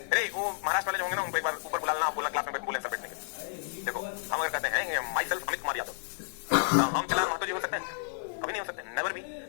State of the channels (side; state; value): right; silent; 57 dB below the other